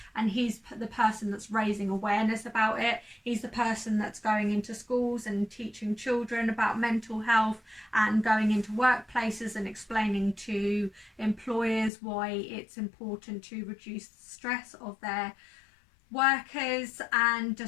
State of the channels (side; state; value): right; drops out; at 11.9 s